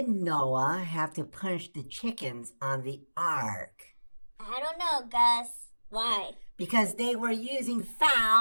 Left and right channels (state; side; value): inverted; both; correlation -1.00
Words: Noah have to punish the chickens on the ark? I don't know, Gus. Why? Because they were using